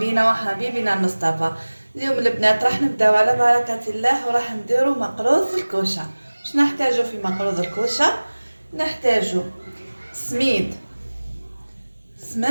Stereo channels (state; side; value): inverted; both; correlation -1.00